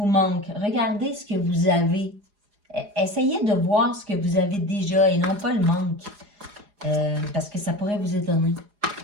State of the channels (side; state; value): left; late; 4.9 ms